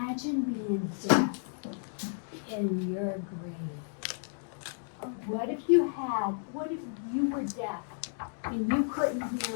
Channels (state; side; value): silent; right; digital silence